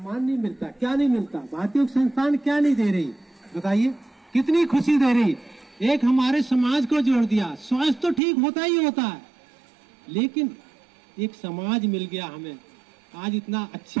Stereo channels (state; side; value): drops out; left; at 8.2 s